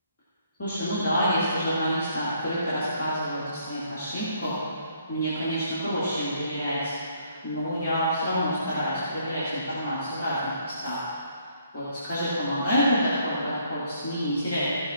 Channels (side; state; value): both; inverted; correlation -0.67